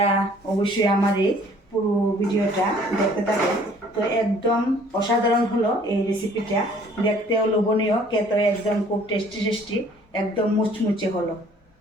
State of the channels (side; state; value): both; normal; correlation 0.56